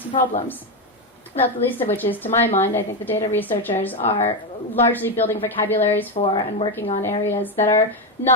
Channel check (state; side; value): normal; both; correlation 0.09